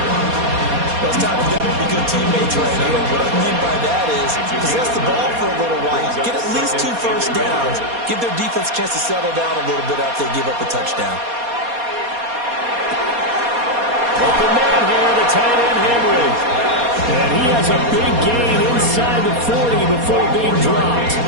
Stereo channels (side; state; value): left; late; 4.2 ms